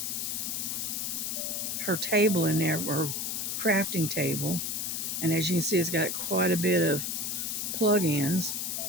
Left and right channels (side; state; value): left; noise; hiss, 2 dB below the sound